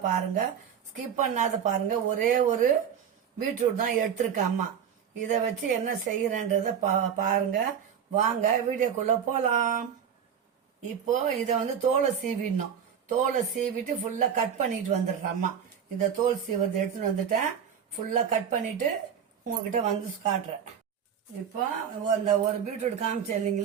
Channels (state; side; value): quieter; left; 8.1 dB